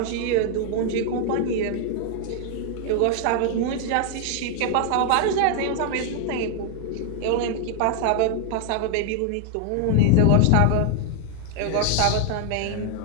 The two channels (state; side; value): different; both; correlation 0.00